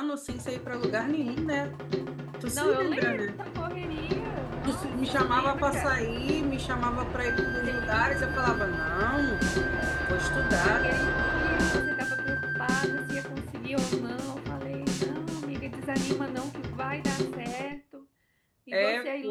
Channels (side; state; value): both; identical; correlation 1.00